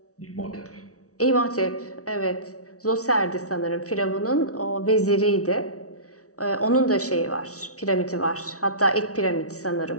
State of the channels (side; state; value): right; late; 0.66 ms